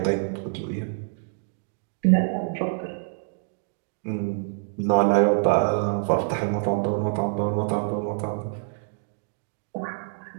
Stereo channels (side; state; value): left; silent; 61 dB below the other